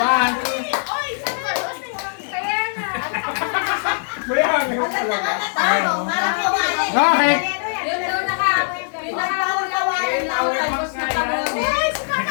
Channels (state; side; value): silent; right; digital silence